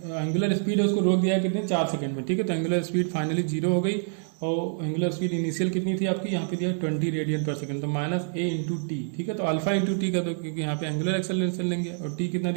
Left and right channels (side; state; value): left; silent; digital silence